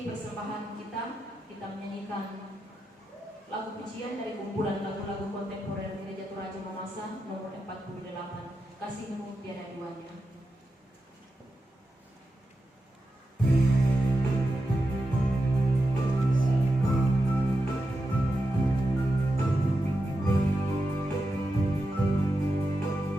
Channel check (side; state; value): both; normal; correlation 0.89